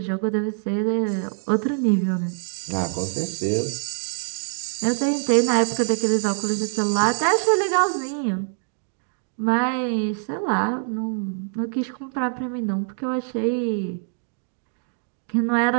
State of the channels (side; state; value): left; silent; 62 dB below the other